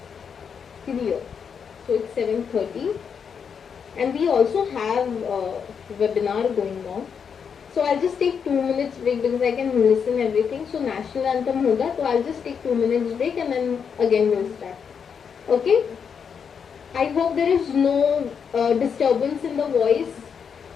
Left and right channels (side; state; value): right; quieter; 6.8 dB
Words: Clear. So it's 7:30 and we also have a webinar going on. So I'll just take 2 minutes break because I can listen everything. So national anthem hoga, so I'll just take 2 minutes break and then again we'll start. Okay? I hope there is no disturbance in the voice.